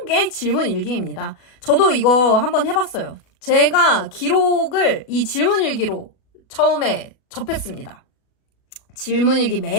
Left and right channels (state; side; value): late; right; 37 ms